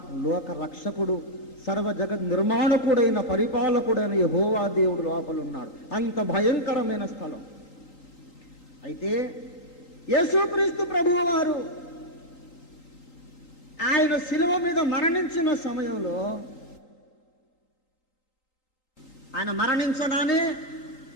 లోక రక్షకుడు, సర్వ జగత్ నిర్మాణకుడైన పరిపాలకుడైన యెహోవా దేవుడు లోపల ఉన్నాడు. అంత భయంకరమైన స్థలం. అయితే యేసుక్రీస్తు ప్రభువు వారు ఆయన శిలువ మీద మరణించిన సమయంలో, ఆయన మరణించగానే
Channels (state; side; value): late; right; 3.8 ms